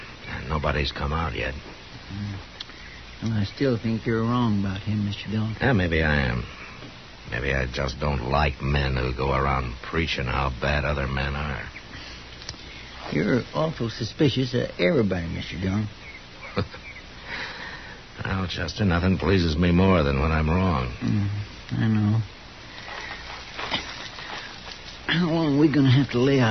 Nobody's come out yet. Well, I still think you're wrong about him, Mr. Dillon. Yeah, maybe I am. Maybe I just don't like men who go around preaching how bad other men are. You're awful suspicious of everybody, Mr. Dillon. Well, Chester, nothing pleases me more than when I'm wrong. I know. How long are we going to have to lay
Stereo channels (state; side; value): identical; both; correlation 1.00